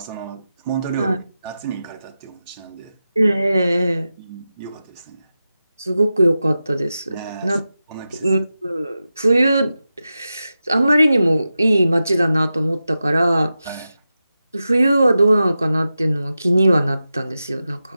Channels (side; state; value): both; inverted; correlation -0.92